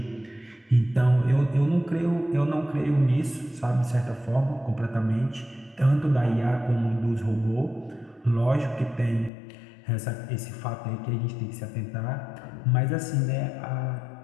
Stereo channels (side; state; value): right; drops out; at 9.3 s